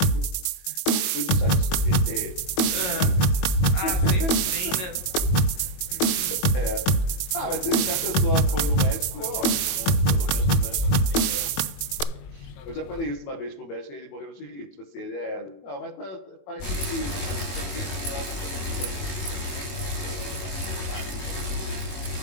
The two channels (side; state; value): right; late; 21 ms